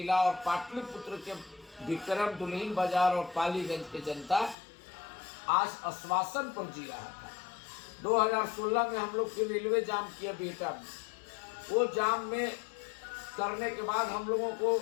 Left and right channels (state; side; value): drops out; right; at 4.5 s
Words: और पाटलिपुत्र के विक्रम, दुल्हिन बाजार और पालीगंज के जनता आज आश्वासन पर जी रहा था। 2016 में हम लोग फिर रेलवे जाम किया बिहटा में। वो जाम में करने के बाद हम लोगों को